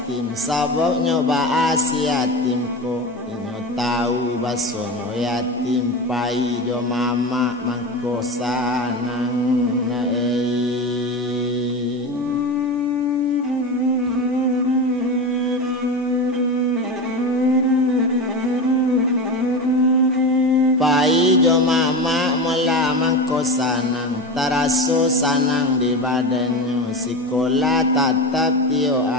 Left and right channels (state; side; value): normal; both; correlation 0.24